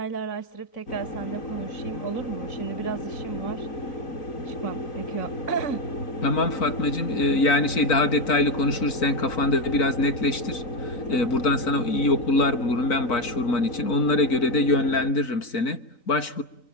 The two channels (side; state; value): right; late; 3.9 ms